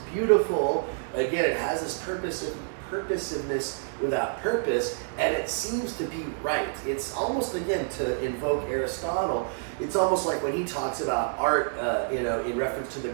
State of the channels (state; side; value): silent; left; digital silence